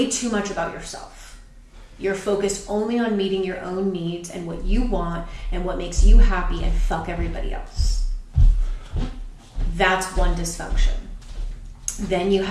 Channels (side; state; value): both; identical; correlation 1.00